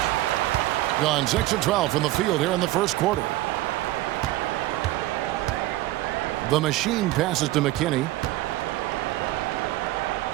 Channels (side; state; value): left; quieter; 16.8 dB